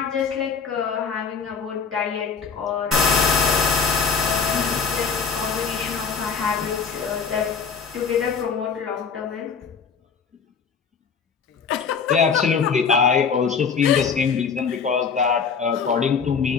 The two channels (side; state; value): right; quieter; 5.9 dB